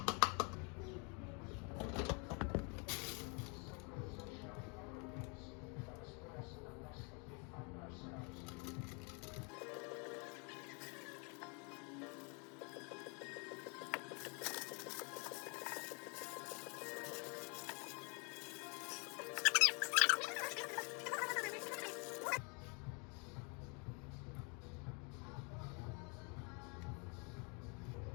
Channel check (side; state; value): right; quieter; 34.5 dB